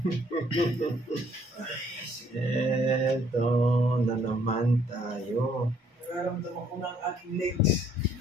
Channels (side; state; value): both; normal; correlation 0.64